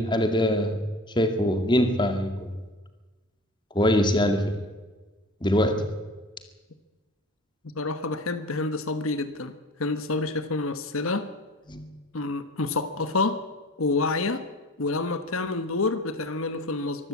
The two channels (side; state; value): both; normal; correlation 0.40